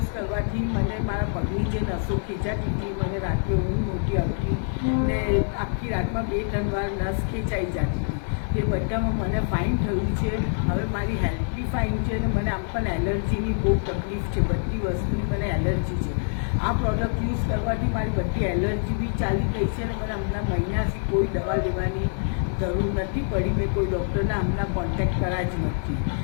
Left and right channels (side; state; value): right; silent; 61 dB below the other